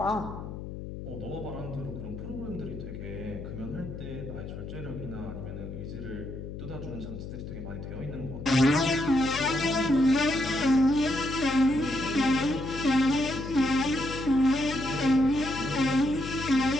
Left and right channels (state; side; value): noise; left; hum, 9 dB below the sound